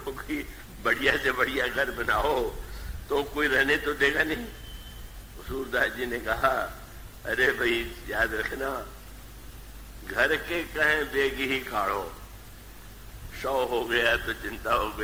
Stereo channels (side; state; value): both; identical; correlation 1.00